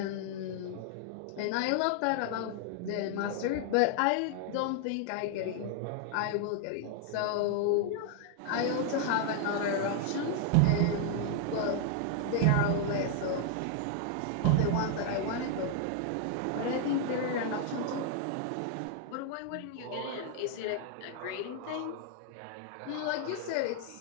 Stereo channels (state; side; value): different; both; correlation 0.00